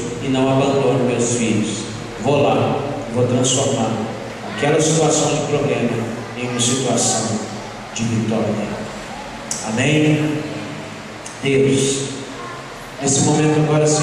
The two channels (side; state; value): both; identical; correlation 1.00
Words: e não abandono meus filhos. Vou lá, vou transformar aquela situação de problema em uma situação de vitória. Amém? Deus, nesse momento agora,